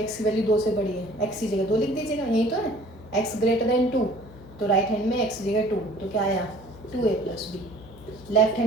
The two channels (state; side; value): noise; left; hum, 19 dB below the sound